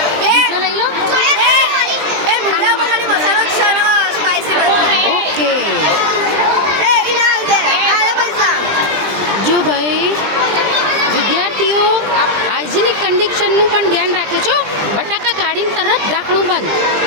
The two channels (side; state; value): left; late; 20 ms